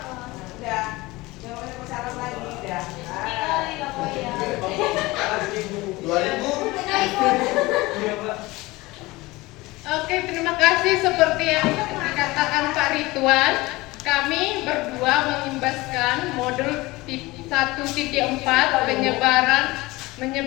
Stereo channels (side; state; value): right; quieter; 21.0 dB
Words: Udah. Jangan banyak berharap lagi udah. Sekali lah kau ya. 2000. Oke, terima kasih. Seperti yang dikatakan Pak Ridwan, kami berdua mengimbaskan modul 1.4